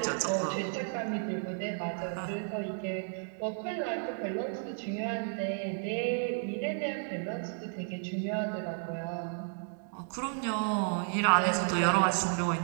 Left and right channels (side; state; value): left; silent; 56 dB below the other